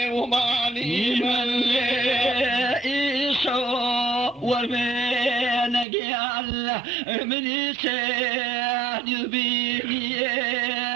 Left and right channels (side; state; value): left; drops out; at 5.9 s